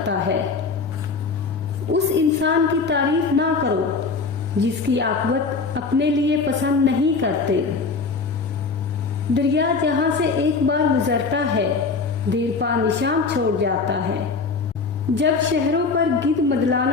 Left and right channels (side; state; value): right; quieter; 4.6 dB